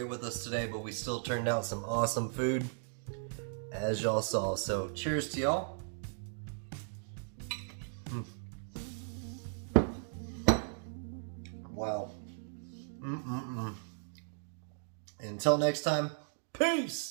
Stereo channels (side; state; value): left; silent; digital silence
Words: with us today, but we still turned out some awesome food, as y'all saw. So cheers to y'all. Wow. Until next time,